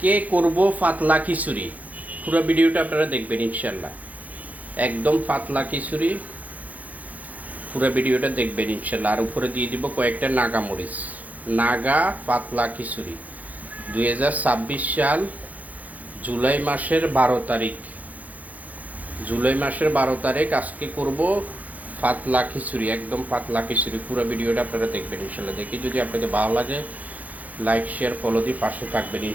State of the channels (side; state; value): left; late; 0.077 ms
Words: করব পাতলা খিচুড়ি। পুরো ভিডিওটা আপনারা দেখবেন ইনশাল্লাহ। একদম পাতলা খিচুড়ি, পুরো ভিডিওটা দেখবেন ইনশাল্লাহ। আর উপরে দিয়ে দিব কয়েকটা নাগা মরিচ। নাগা পাতলা খিচুড়ি 2026 সাল জুলাই মাসের 12 তারিখ। জুলাই মাসের 12 তারিখ আজকে করব পাতলা খিচুড়ি, একদম পাতলা খিচুড়ি। পুরো ভিডিওটা আপনারা দেখবেন ইনশাল্লাহ। দেখি যদি আপনাদের ভালো লাগে লাইক শেয়ার ফলো দিয়ে পাশে থাকবেন